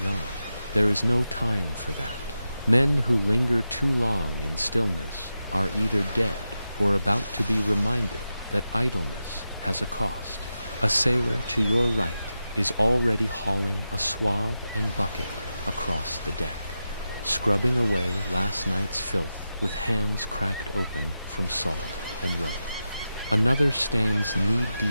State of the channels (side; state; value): both; inverted; correlation -0.91